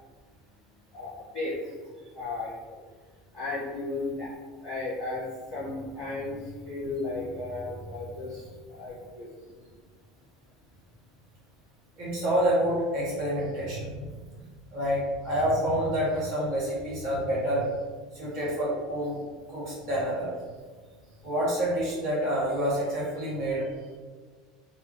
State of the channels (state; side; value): normal; both; correlation 0.31